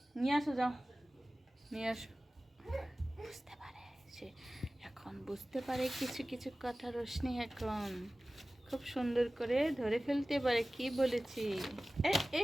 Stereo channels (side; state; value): both; normal; correlation 0.97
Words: নিয়ে আসো, যাও নিয়ে আসো। বুঝতে পারে সে, এখন বুঝতে পারে কিছু কিছু কথা রোশনি এখন খুব সুন্দর করে ধরে ফেলতে পারে কি বলেছি। এ